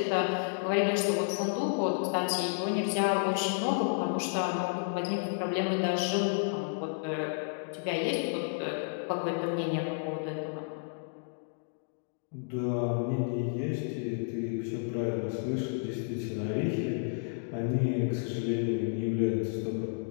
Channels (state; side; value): silent; right; digital silence